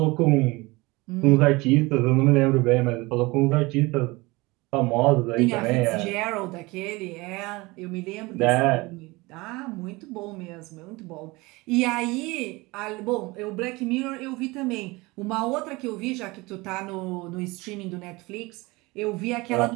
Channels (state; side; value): quieter; left; 23.0 dB